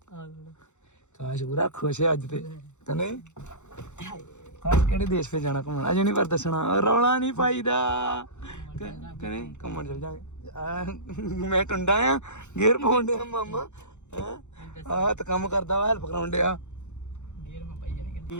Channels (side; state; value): right; late; 0.83 ms